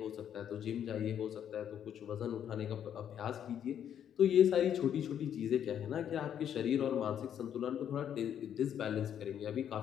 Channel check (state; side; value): quieter; right; 9.4 dB